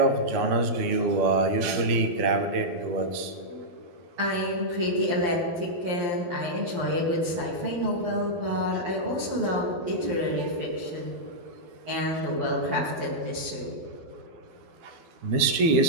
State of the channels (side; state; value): left; late; 12 ms